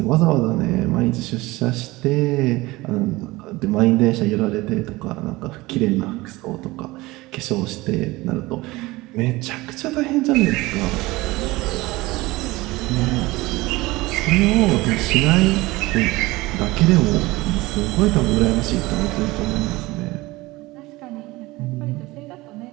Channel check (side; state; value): left; quieter; 20.5 dB